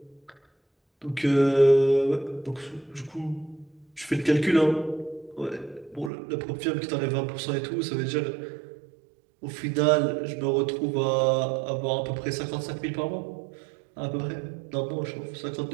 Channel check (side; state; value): left; drops out; at 6.1 s